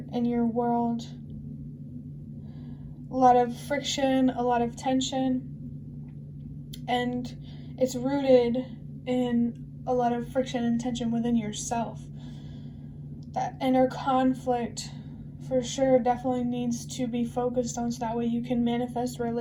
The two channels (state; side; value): identical; both; correlation 1.00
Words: in your world, a lot of friction, a lot of tension, and it's rooted in a lot of friction and tension within yourself. That inner conflict for sure definitely needs to be focused on, so that way you can manifest